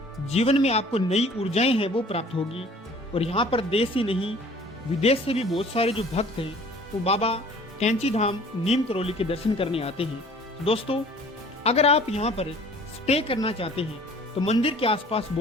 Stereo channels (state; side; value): normal; both; correlation 0.51